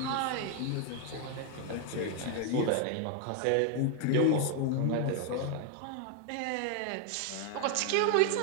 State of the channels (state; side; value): different; both; correlation 0.01